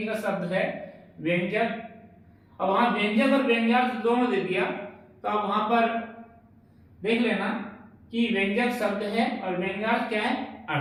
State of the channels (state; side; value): identical; both; correlation 1.00